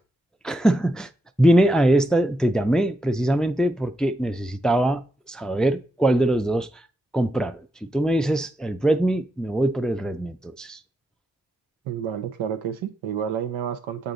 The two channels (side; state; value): both; normal; correlation 0.84